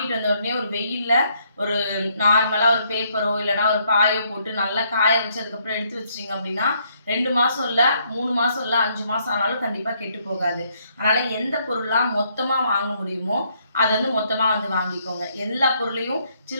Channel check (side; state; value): both; inverted; correlation -0.70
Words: வந்த உடனே ஒரு வெயிலில் ஒரு நார்மலாக ஒரு பேப்பரோ இல்லைனா ஒரு பாயோ போட்டு நல்லா காய வச்சு அதுக்கப்புறம் எடுத்து வச்சிட்டிங்க அப்படின்னா 2 மாதம் இல்லை 3 மாதம் இல்லை 5 மாதம் ஆனாலும் கண்டிப்பாக கெட்டு போகாது. அதனால் எந்த பொருளாக மொத்தமாக வாங்க முடியுமோ அதை வந்து மொத்தமாக வந்து வாங்கிக்கோங்க. எல்லா பொருளையும்